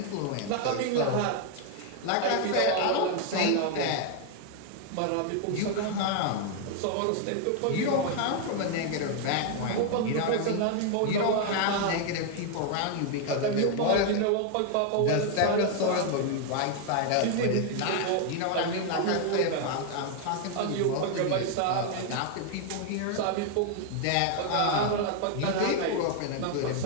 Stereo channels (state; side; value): different; both; correlation 0.00